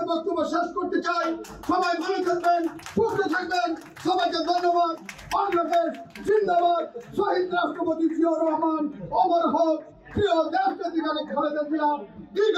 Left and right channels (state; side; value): identical; both; correlation 1.00